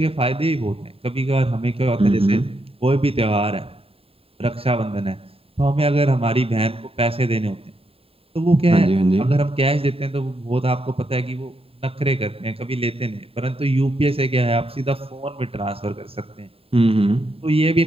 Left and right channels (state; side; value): late; left; 0.27 ms